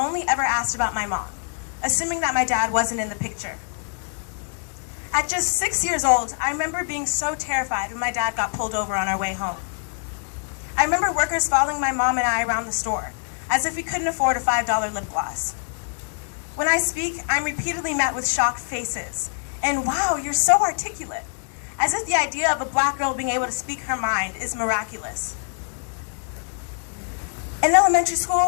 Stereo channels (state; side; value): silent; right; digital silence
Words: ever asked about my mom, assuming that my dad wasn't in the picture. At just 6 years old, I remember being so terrified when my dad got pulled over on our way home. I remember workers following my mom and I around the store, as if we couldn't afford a $5 lip gloss. When I speak, I'm repeatedly met with shocked faces, and wow, you're so articulate, as if the idea of a black girl being able to speak her mind is miraculous. In elementary